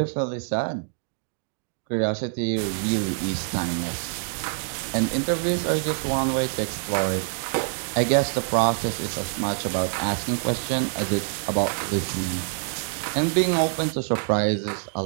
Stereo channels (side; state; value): left; silent; digital silence